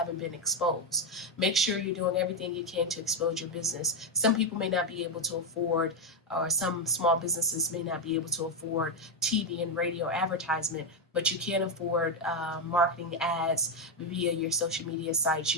been exposed. Make sure you're doing everything you can to expose your business. Some people may not be able to afford, or some small businesses may not be able to afford TV and radio advertisement, but you can afford marketing ads via your social media sites.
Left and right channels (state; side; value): normal; both; correlation 0.05